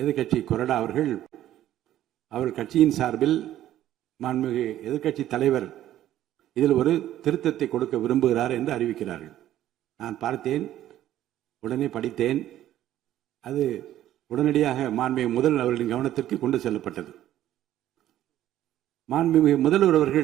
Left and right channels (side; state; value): left; quieter; 12.7 dB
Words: கொறடா அவர்கள் கட்சியின் சார்பில் மாண்புமிகு எதிர்கட்சி தலைவர் இதில் ஒரு திருத்தத்தை கொடுக்க விரும்புகிறார் என்று அறிவிக்கிறார்கள். நான் பார்த்தேன், உடனே படித்தேன். அது உடனடியாக மாண்புமிகு முதல்வர் அவர்களின் கவனத்திற்கு கொண்டு செல்லப்பட்டது. மாண்புமிகு முதல்வர்